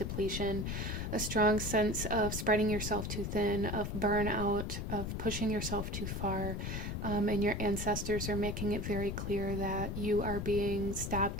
a strong sense of spreading yourself too thin, of burnout, of pushing yourself too far. And your ancestors are making it very clear that you are being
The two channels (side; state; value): left; noise; rumble, 3 dB below the sound